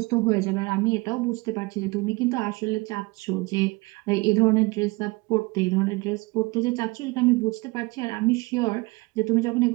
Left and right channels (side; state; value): left; quieter; 24.5 dB